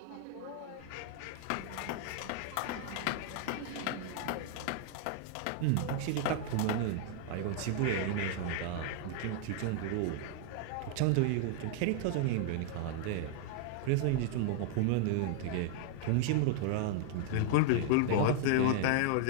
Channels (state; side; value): different; both; correlation 0.00